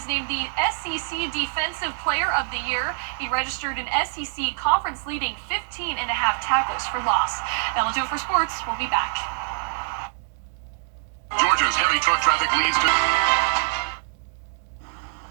named the SEC Defensive Player of the Year. He registered an SEC conference-leading 15.5 tackles for loss. That'll do it for sports. We'll be back. Georgia's heavy truck traffic leads to...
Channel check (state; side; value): silent; left; digital silence